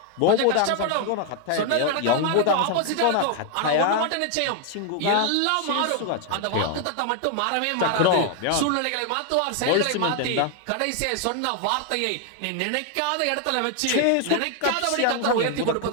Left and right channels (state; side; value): different; both; correlation 0.00